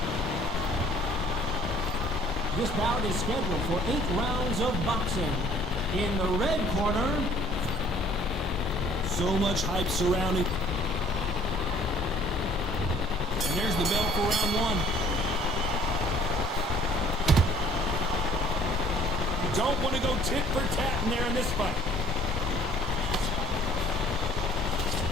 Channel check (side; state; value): both; normal; correlation 0.57